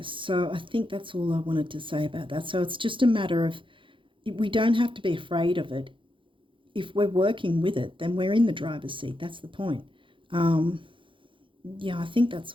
so I think that's all I wanted to say about that. So it's just a matter of, we don't have to be afraid of it. If we're working with it, then we're in the driver's seat. That's the point. Yeah, I think that's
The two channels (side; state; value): left; late; 0.25 ms